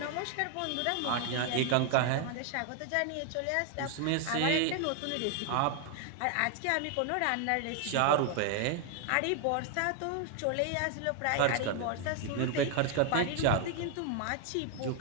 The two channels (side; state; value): both; different; correlation 0.00